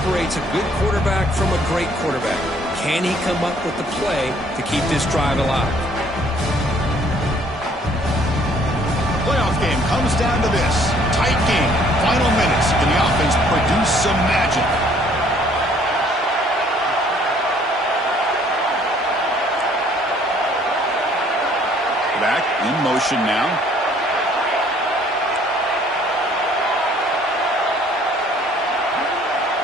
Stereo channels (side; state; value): both; normal; correlation 0.60